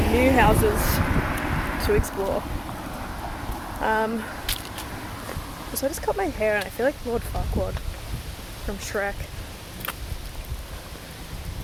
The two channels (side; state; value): both; identical; correlation 1.00